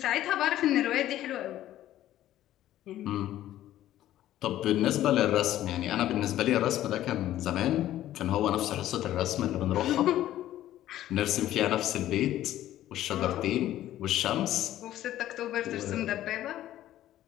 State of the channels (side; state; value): right; quieter; 13.3 dB